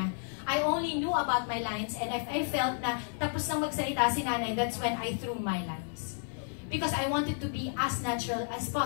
I only knew about my lines, and if I felt na tapos nang magsalita si Nanay, that's when I threw my lines. Because I wanted to be as natural as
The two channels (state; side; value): silent; right; digital silence